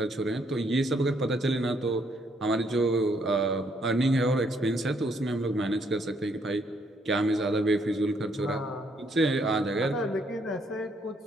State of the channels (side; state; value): both; normal; correlation 0.70